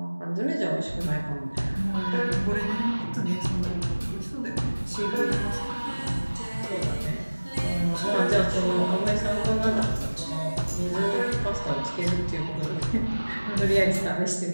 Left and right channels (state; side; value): inverted; both; correlation -1.00